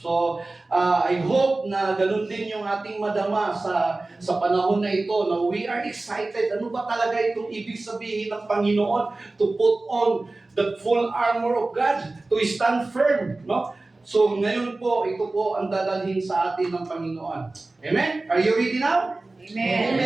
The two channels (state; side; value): quieter; left; 3.1 dB